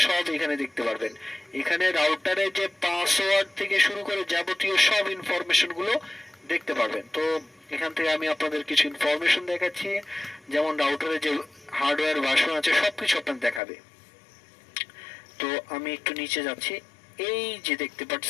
সব এখানে দেখতে পারবেন। এখানে রাউটারের যে পাসওয়ার্ড থেকে শুরু করে যাবতীয় সব ইনফরমেশন গুলো দেখতে পারবেন। তো এখান থেকে আমি আপনাদের কিছু ইনফরমেশন দেখাচ্ছি, যেমন রাউটারের যে হার্ডওয়্যার ভার্সন আছে সবকিছু আপনাদের দেখাবে। তো আমি একটু নিচে যাচ্ছি। এই যে দেখতে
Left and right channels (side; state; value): right; drops out; at 13.6 s